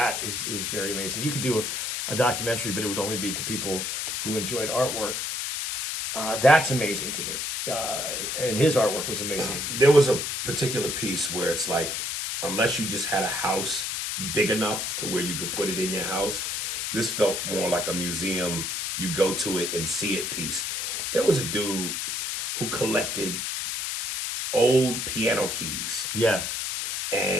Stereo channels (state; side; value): noise; left; hiss, 2 dB below the sound